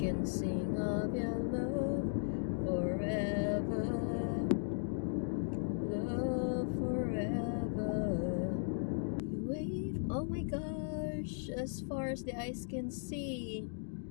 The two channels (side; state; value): right; silent; digital silence